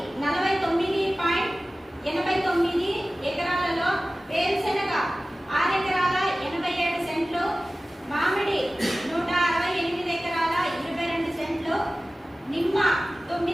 49.89 ఎకరాలలో, వేరుశెనగ 6 ఎకరాల 87 సెంట్లు, మామిడి 168 ఎకరాల 22 సెంట్లు, నిమ్మ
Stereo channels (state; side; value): normal; both; correlation 0.97